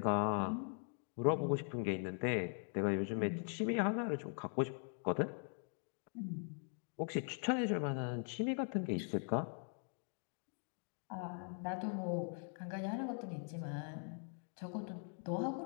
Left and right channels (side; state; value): right; silent; 50 dB below the other